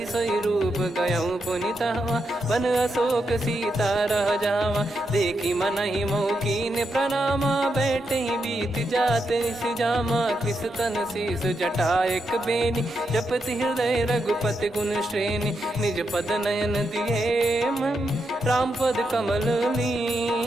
सोई रूप गयऊँ पुनि तहवा, वन अशोक सीता रह जावा। देखी मनहि मोह कीन्ह प्रणामा, बैठे ही बीत जात निस जामा। कृस तन शीस जटा एक बेनी, जपति हृदय रघुपति गुण श्रेणी। निज पद नयन दिए मन, राम पद कमल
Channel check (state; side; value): normal; both; correlation 0.83